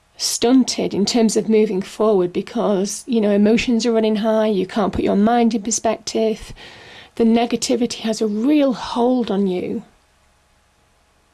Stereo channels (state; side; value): identical; both; correlation 1.00